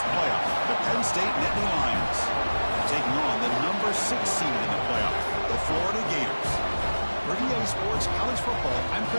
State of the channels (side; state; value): both; inverted; correlation -1.00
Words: playoff, the Penn State Nittany Lions, taking on the number 6 seed in the playoff, the Florida Gators. For EA Sports College Football, I'm